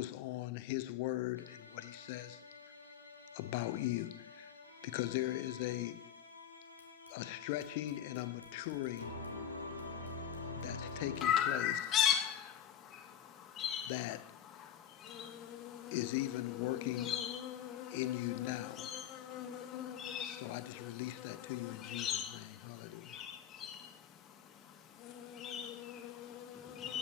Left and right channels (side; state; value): right; quieter; 10.4 dB